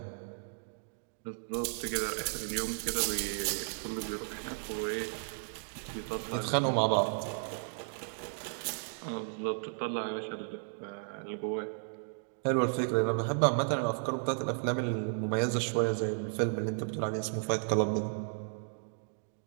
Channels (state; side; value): silent; left; digital silence